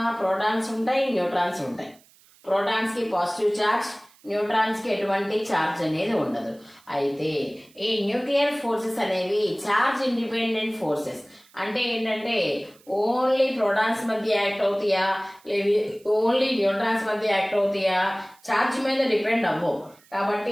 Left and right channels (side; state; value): right; noise; hiss, 29 dB below the sound